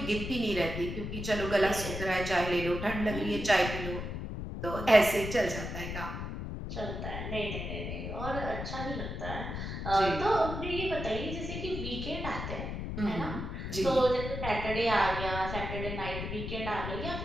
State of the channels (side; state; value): left; noise; rumble, 5 dB below the sound